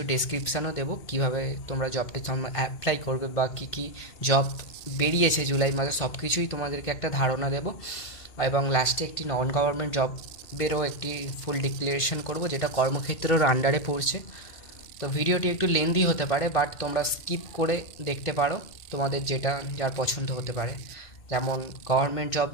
ডেসক্রিপশানও দেবো কীভাবে তোমরা জবটি অ্যাপ্লাই করবে বা কী কী জব বেরিয়েছে জুলাই মাসে, সব কিছুই তোমাদেরকে একটা ধারণা দেবো। এবং লাস্টে একটি নন গভর্নমেন্ট জবেরও একটি ফুল ডিক্লারেশন করব, যেটা কর্মক্ষেত্রের আন্ডারে পড়ছে। তো ভিডিওটি একটু লেন্দি হতে পারে, বাট তোমরা স্কিপ করে দেখতে পারো, তোমাদের যেটা যার পছন্দ হতে পারে। যেমন গভর্নমেন্ট জব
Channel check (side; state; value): right; late; 2.1 ms